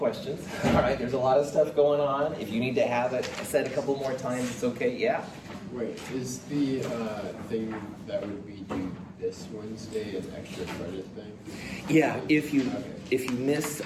All right, there's a lot of stuff going on. If you need to have it said a couple more times, it's okay. Yeah. Wait, is the thing that would be due this Wednesday an extra credit thing? Yeah. If you miss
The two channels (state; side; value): identical; both; correlation 1.00